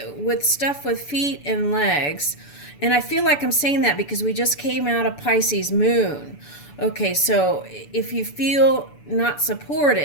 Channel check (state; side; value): late; right; 6.9 ms